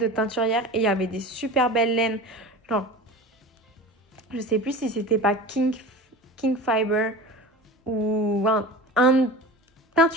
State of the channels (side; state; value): both; normal; correlation 0.34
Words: teinturière et il y avait des super belles laines. Genre, je sais plus si c'était pas King Fiber ou un